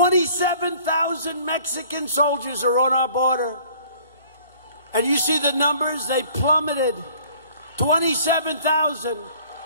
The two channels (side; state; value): both; inverted; correlation -0.54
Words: Mexican soldiers are on our border. And you see the numbers, they plummeted. 27,000.